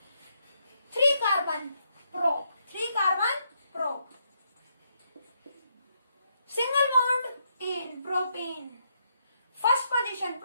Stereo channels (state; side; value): inverted; both; correlation -0.78